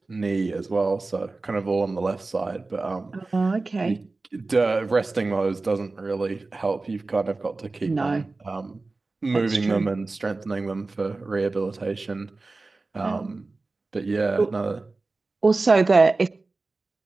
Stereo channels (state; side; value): quieter; left; 3.5 dB